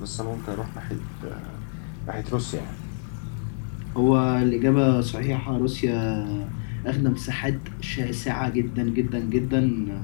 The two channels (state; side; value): silent; right; 61 dB below the other